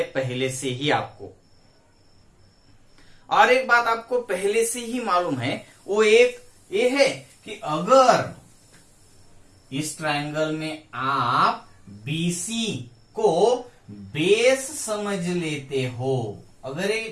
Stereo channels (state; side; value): identical; both; correlation 1.00